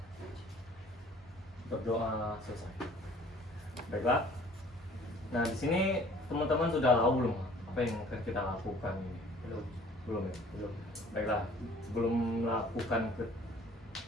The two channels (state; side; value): normal; both; correlation 0.53